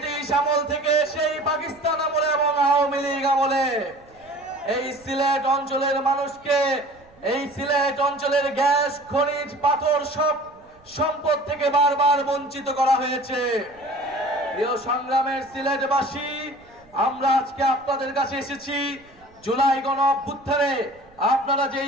আমল থেকে, সেই পাকিস্তান আমলে এবং আওয়ামী লীগ আমলে। এই সিলেট অঞ্চলের মানুষকে, এই সিলেট অঞ্চলের গ্যাস, খনিজ, পাথর সব সম্পদ থেকে বারবার বঞ্চিত করা হয়েছে। প্রিয় সংগ্রামের সিলেটবাসী, আমরা আজকে আপনাদের কাছে এসেছি জুলাই গণ অভ্যুত্থানে আপনারা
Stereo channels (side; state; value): right; noise; rumble, 29 dB below the sound